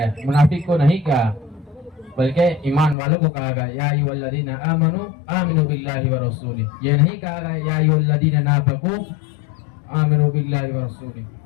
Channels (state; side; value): drops out; right; at 3.0 s